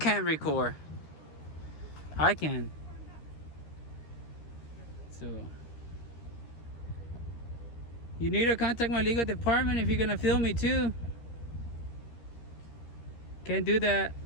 record. I can. So you need to contact my legal department if you're gonna film me too. Can't do that.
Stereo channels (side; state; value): right; late; 13 ms